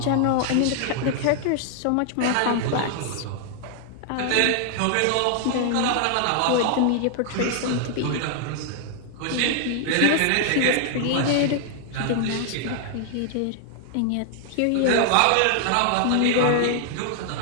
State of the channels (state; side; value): different; both; correlation 0.00